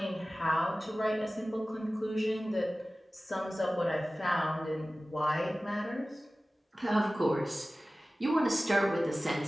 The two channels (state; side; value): normal; both; correlation 0.97